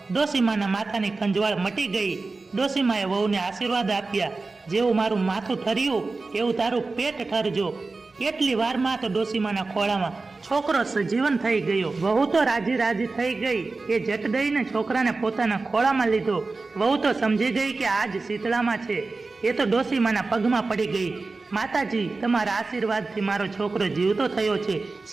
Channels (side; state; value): left; quieter; 3.7 dB